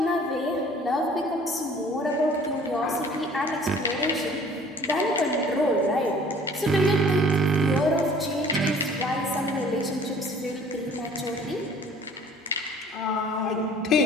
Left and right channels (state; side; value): normal; both; correlation 0.51